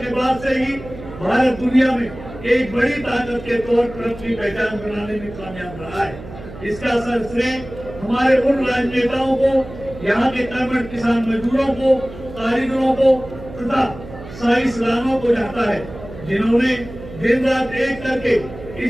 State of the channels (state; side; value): noise; right; hum, 14 dB below the sound